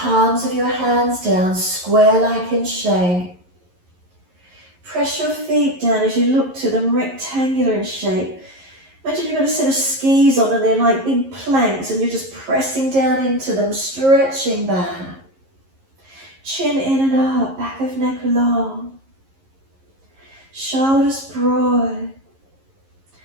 of your hands down, square like in shape. Press your feet down as you look to them rectangular in shape. Imagine you've got a set of skis on and they're like big planks and you're just pressing down into them, stretching back. Chin in and up, back of neck long. Shoulders broad.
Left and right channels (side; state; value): left; late; 11 ms